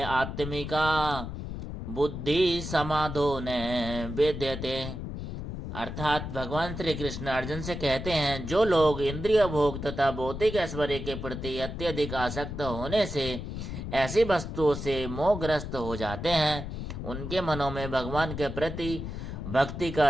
आत्मिका बुद्धि समाधो न वेद्यते। अर्थात भगवान श्री कृष्ण अर्जुन से कहते हैं, जो लोग इंद्रिय भोग तथा भौतिक ऐश्वर्य के प्रति अत्यधिक आसक्त होने से ऐसी वस्तुओं से मोहग्रस्त हो जाते हैं, उनके मनों में भगवान के प्रति भक्ति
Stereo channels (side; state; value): left; noise; rumble, 6 dB below the sound